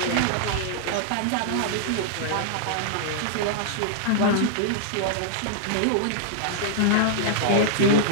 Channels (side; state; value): both; different; correlation -0.01